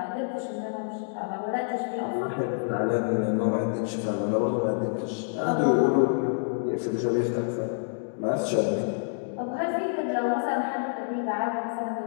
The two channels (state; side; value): silent; right; digital silence